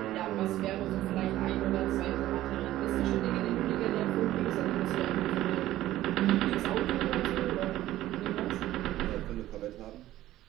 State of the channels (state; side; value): quieter; left; 14.6 dB